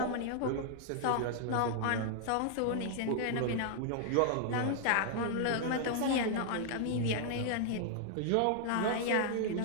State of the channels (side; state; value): both; different; correlation 0.00